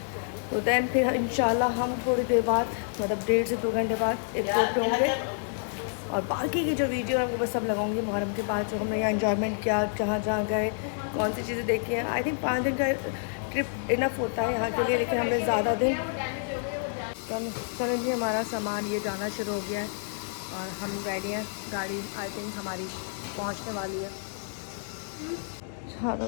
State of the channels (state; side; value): silent; right; 59 dB below the other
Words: तो दैन फिर इंशाल्लाह हम थोड़ी देर बाद, मतलब 1.5 से 2 घंटे बाद एयरपोर्ट पे होंगे। और बाकी की जो वीडियो है वो बस सब लगाऊंगी मुहर्रम के बाद, जो हमने यहाँ इंजॉयमेंट किया, जहाँ गए, कौन सी चीज़ें देखी हैं। आई थिंक 5 दिन का ट्रिप इनफ होता है यहाँ के लिए, लेकिन हमने ज़्यादा दिन। चलो जी हमारा सामान ये जाना शुरू हो गया है और हम रेडी हैं। गाड़ी आई थिंक हमारी पहुँचने वाली है।